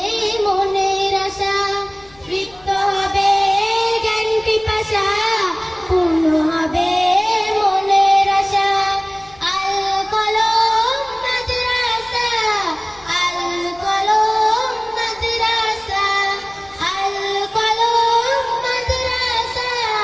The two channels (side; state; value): left; noise; hum, 27 dB below the sound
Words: মনের আশা। তৃপ্ত হবে জ্ঞান পিপাসা, পূর্ণ হবে মনের আশা। আল কলম মাদ্রাসা, আল কলম মাদ্রাসা, আল কলম মাদ্রাসা,